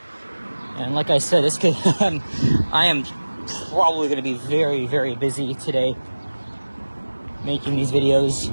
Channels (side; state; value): both; inverted; correlation -1.00